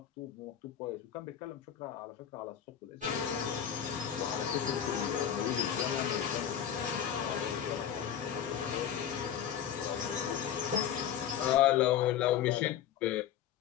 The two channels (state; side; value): quieter; right; 9.5 dB